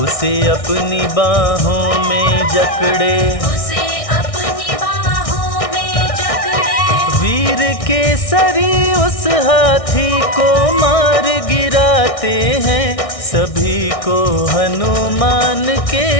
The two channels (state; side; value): late; right; 1.6 ms